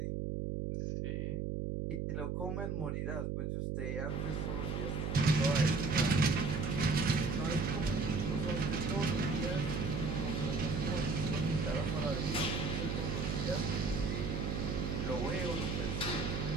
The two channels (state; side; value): noise; right; hum, 1 dB below the sound